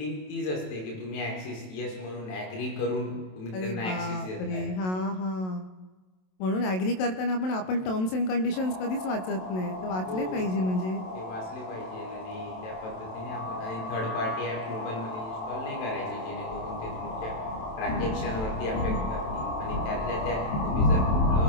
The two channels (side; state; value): right; late; 27 ms